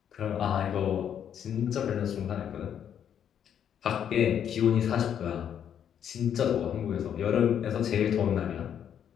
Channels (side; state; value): right; quieter; 9.0 dB